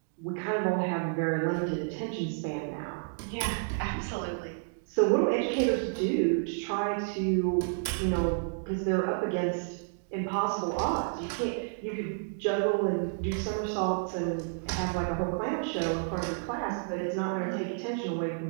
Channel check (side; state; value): left; silent; digital silence